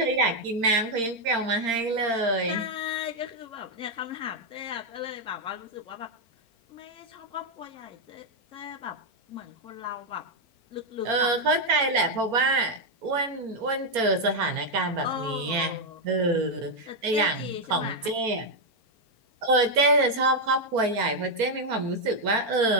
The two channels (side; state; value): left; late; 4.4 ms